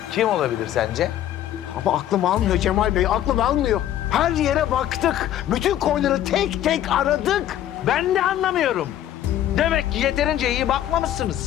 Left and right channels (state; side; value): quieter; right; 11.9 dB